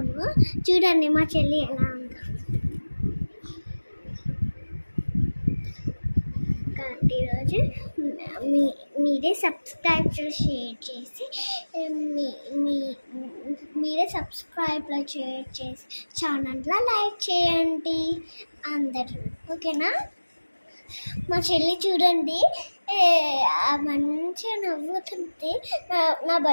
చూడండి మా చెల్లి ఎలా ఉందో. ఈరోజు మీరే సబ్స్క్రైబ్ షేర్ చేసి మీరే సబ్స్క్రైబ్లో షేర్ చేసి ఛానల్లో లైక్ చేయండి అందరూ, ఓకేనా? మా చెల్లి చూడండి మంచిగా నవ్వుతుంది. నా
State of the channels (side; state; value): both; inverted; correlation -1.00